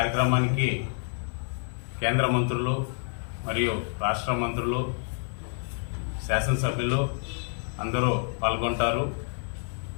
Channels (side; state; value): right; silent; 59 dB below the other